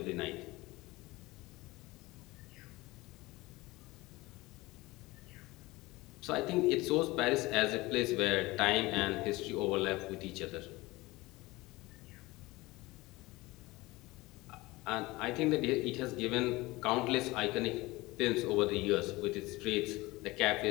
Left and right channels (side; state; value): right; quieter; 21.0 dB